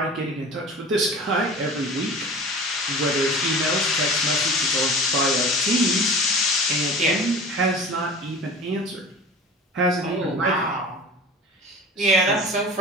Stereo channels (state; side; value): normal; both; correlation 0.38